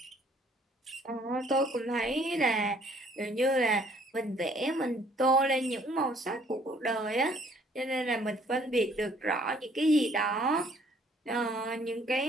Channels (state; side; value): normal; both; correlation 0.61